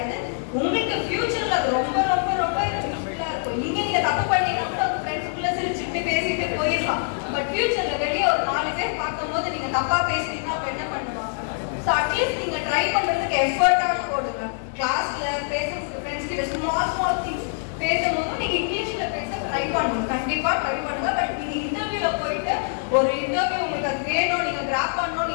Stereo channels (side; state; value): right; silent; 61 dB below the other